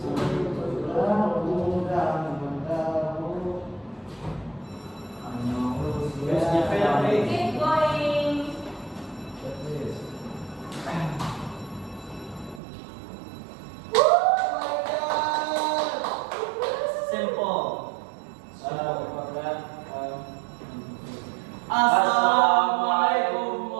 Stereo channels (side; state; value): left; drops out; at 12.6 s